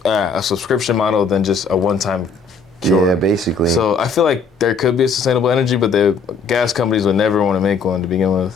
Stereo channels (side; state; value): right; quieter; 4.7 dB